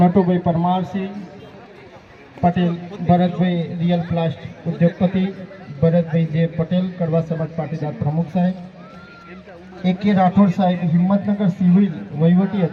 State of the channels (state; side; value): identical; both; correlation 1.00